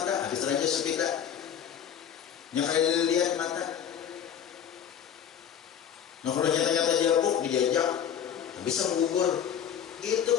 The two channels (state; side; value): quieter; right; 8.8 dB